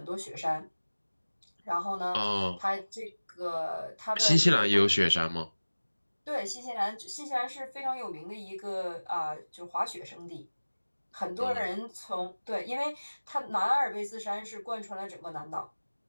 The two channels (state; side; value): inverted; both; correlation -1.00